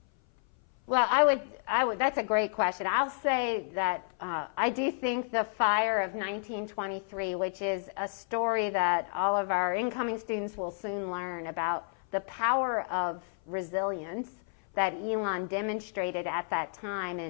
Well, I would. That's a great question. I'll say that I do think the fire of 1923, which is a story that all of our incoming students will soon learn about, the power of resilience that Elon demonstrated at that time,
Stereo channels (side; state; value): right; silent; 56 dB below the other